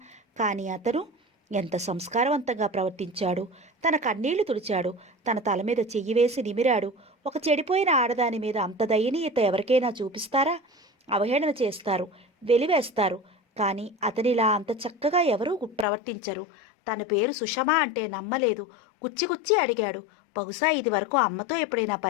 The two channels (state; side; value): drops out; right; at 15.9 s